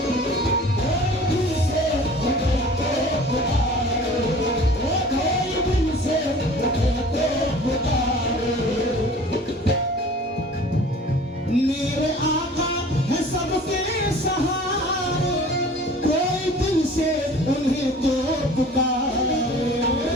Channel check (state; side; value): normal; both; correlation 0.45